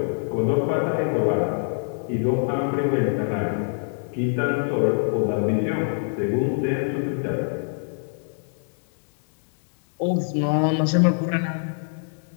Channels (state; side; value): silent; right; 62 dB below the other